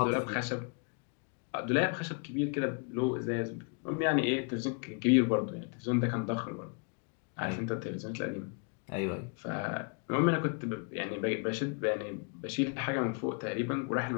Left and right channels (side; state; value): right; quieter; 38.8 dB